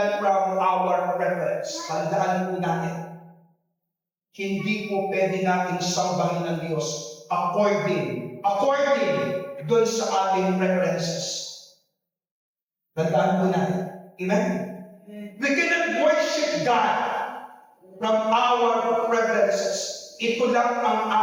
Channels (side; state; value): both; identical; correlation 1.00